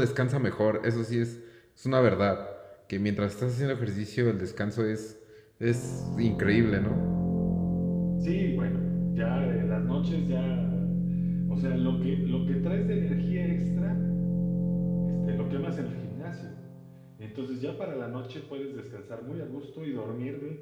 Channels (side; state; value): both; identical; correlation 1.00